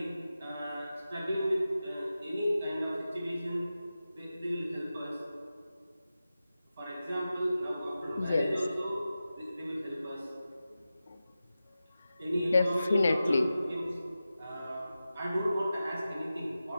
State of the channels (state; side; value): inverted; both; correlation -0.93